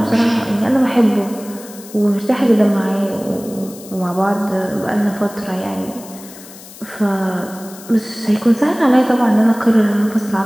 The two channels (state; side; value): noise; left; hiss, 18 dB below the sound